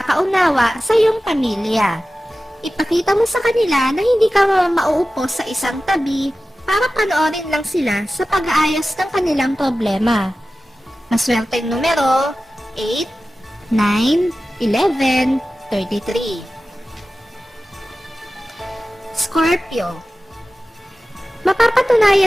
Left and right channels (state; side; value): normal; both; correlation 0.95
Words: sa iyong pamilya. Ipakita mo sa kanila na hindi ka mauupo sa isang tabi para panoorin lang sila sa pag-aayos ng kanilang problema. Maswerteng numero 8, 9, 11, 33. Scorpio,